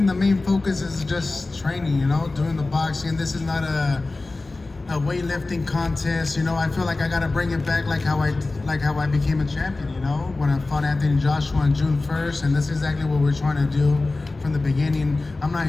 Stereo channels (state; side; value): quieter; right; 3.3 dB